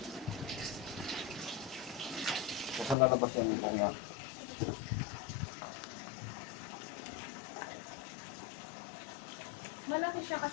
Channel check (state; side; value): drops out; right; at 3.0 s